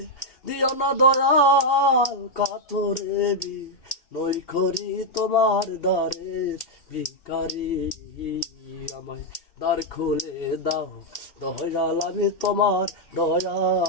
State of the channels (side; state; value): right; late; 2.7 ms